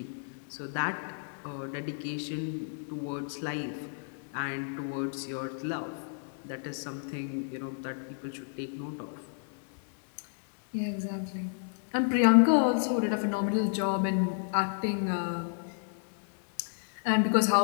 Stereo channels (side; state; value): right; silent; digital silence